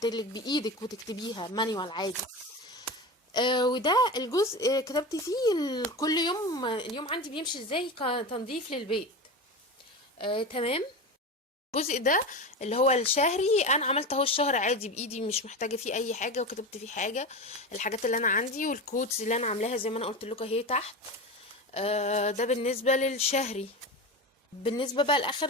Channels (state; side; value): normal; both; correlation 0.25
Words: لك بايدك وتكتبيها مانيوال عادي. وده الجزء كتبت فيه كل يوم اليوم عندي بيمشي ازاي كتنظيف للبيت. تمام. الجزء ده اللي هو الشهري انا عملت اهو الشهر عادي بايدي، مش محتاجه فيه اي حاجه، وكتبت فيه حاجه الحاجات اللي انا عندي والكودز اللي انا عاملاها زي ما انا قلت لكم اهي تحت. ده بالنسبه للشهري. بالنسبه بقى